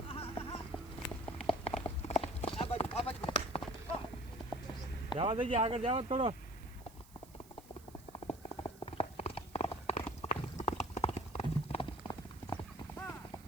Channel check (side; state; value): right; noise; hiss, 23 dB below the sound